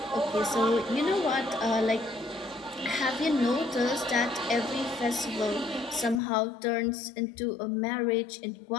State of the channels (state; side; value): drops out; right; at 6.2 s